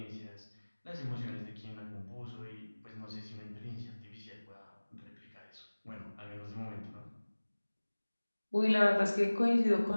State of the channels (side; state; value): both; inverted; correlation -1.00